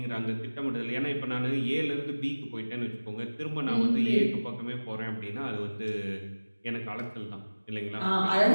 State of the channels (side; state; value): both; inverted; correlation -1.00